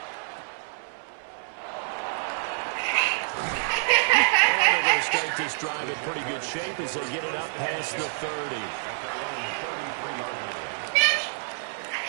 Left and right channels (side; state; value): left; silent; 60 dB below the other